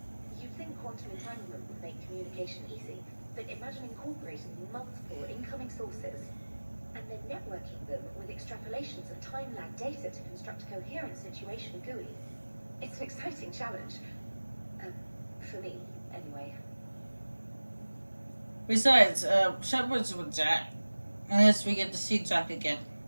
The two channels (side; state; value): both; inverted; correlation -1.00